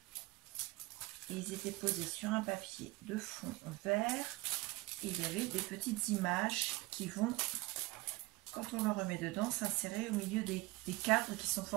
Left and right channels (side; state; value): left; quieter; 21.5 dB